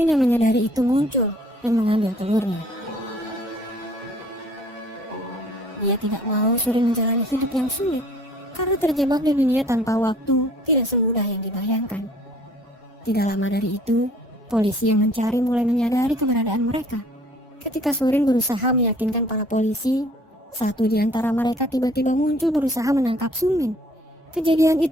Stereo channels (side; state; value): both; normal; correlation 0.55